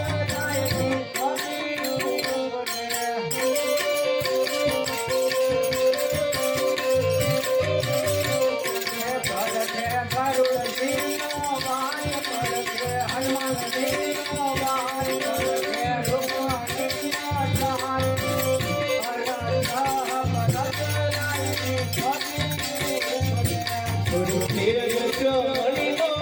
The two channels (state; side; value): identical; both; correlation 1.00